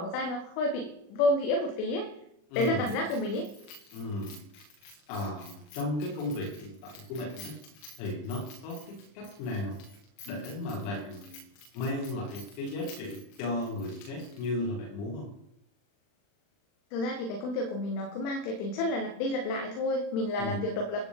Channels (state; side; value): late; right; 40 ms